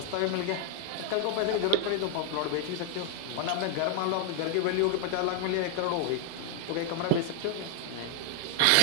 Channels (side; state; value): both; different; correlation 0.00